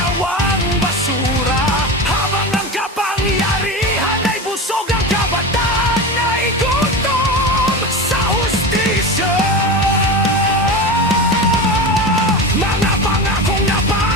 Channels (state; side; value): normal; both; correlation 0.25